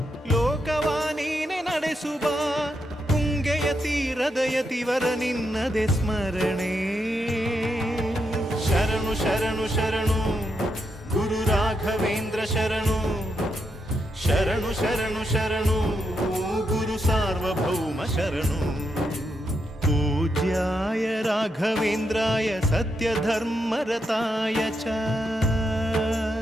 ಲೋಕವ ನೀನೆ ನಡೆಸುವ ತುಂಗೆಯ ತೀರದ ಯತಿವರ ನಿನ್ನದೆ ಸ್ಮರಣೆ ಶರಣು ಶರಣು ಶರಣು ಗುರು ರಾಘವೇಂದ್ರ ಶರಣು ಶರಣು ಶರಣು ಶರಣು ಗುರು ಸಾರ್ವಭೌಮ ಶರಣು पूज्याय राघवेन्द्राय सत्यधर्मरताय च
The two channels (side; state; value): both; normal; correlation 0.82